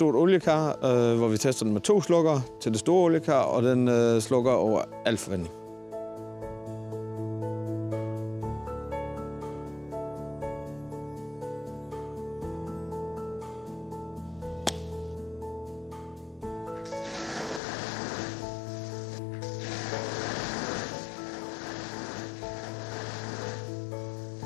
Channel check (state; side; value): drops out; right; at 17.6 s